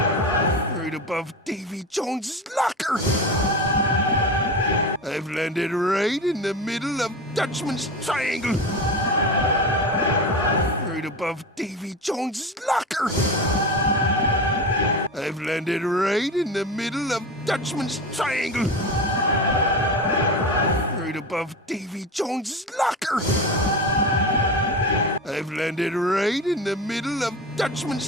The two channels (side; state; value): both; normal; correlation 0.26